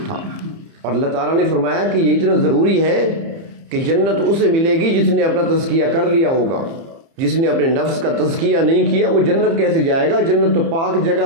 تھا۔ اور اللہ تعالیٰ نے فرمایا کہ یہ اتنا ضروری ہے کہ جنت اسے ملے گی جس نے اپنا تزکیہ کر لیا ہوگا۔ جس نے اپنے نفس کا تزکیہ نہیں کیا وہ جنت کیسے جائے گا؟ جنت تو پاک جگہ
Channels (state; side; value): late; left; 30 ms